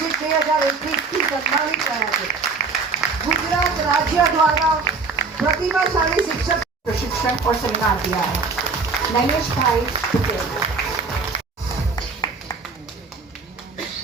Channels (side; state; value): left; quieter; 4.4 dB